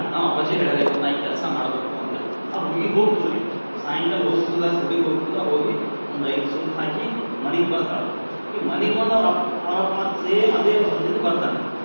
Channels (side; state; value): both; inverted; correlation -1.00